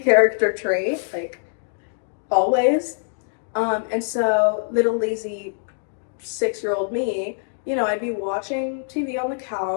trait, like, always. And so little lazy 6-year-old me, I'd be watching TV on the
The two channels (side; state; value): right; silent; digital silence